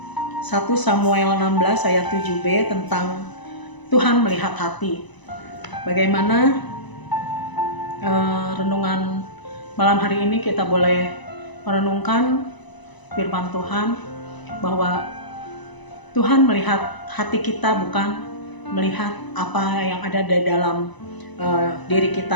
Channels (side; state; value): right; late; 1.0 ms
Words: 1 Samuel 16 ayat 7b tentang Tuhan melihat hati. Bagaimana renungan malam hari ini kita boleh merenungkan firman Tuhan bahwa Tuhan melihat hati kita, bukan melihat apa yang ada di dalam diri